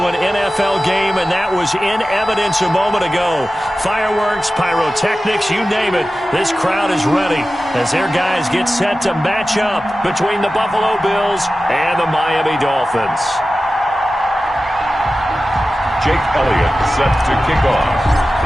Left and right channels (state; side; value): normal; both; correlation 0.95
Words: an NFL game, and that was in evidence a moment ago. Fireworks, pyrotechnics, you name it. This crowd is ready as their guys get set to match up between the Buffalo Bills and the Miami Dolphins. Jake Elliott set to kick off.